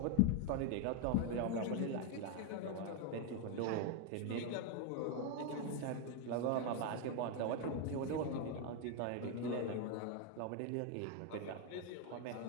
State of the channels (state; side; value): different; both; correlation 0.01